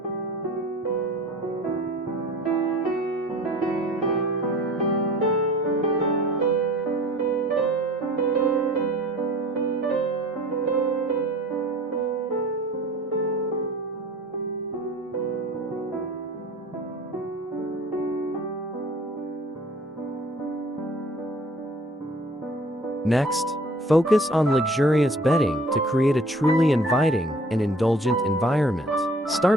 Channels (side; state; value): both; normal; correlation 0.48